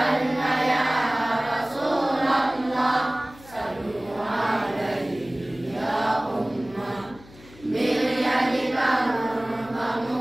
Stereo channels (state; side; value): noise; left; hum, 22 dB below the sound